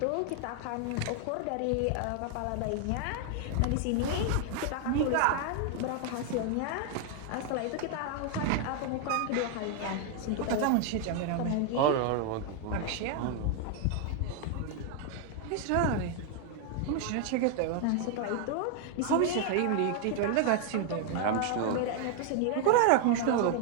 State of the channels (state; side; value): different; both; correlation 0.00